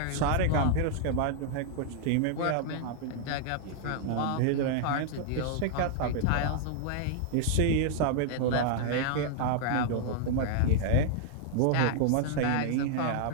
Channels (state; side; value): different; both; correlation -0.01